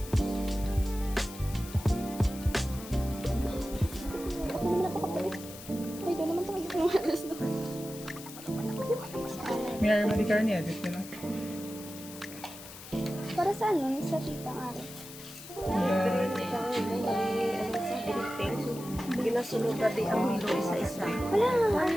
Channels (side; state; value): left; noise; hiss, 15 dB below the sound